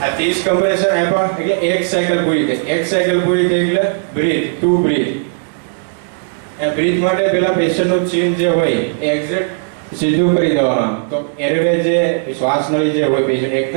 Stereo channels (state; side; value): silent; left; digital silence